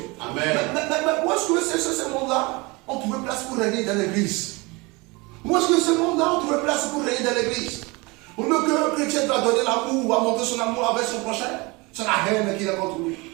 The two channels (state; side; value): quieter; left; 25.6 dB